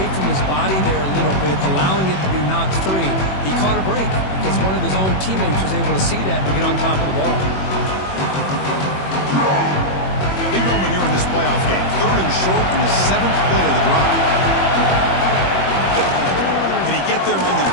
from his body there a little bit, allowing it to be knocked free. He caught a break because one of his own teammates was able to see that and get on top of the ball. Big moment here in this playoff game. 3rd and short in the 7th play of the drive. Can he get there on the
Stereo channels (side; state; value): right; late; 21 ms